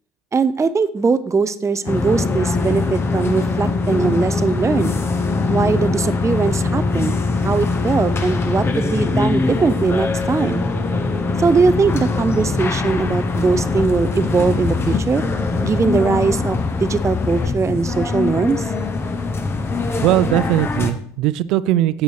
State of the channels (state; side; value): normal; both; correlation 0.75